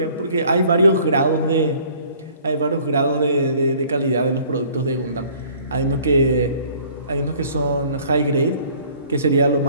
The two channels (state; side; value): inverted; both; correlation -0.54